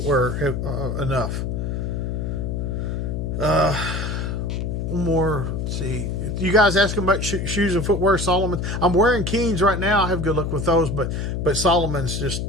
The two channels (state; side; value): noise; left; hum, 2 dB below the sound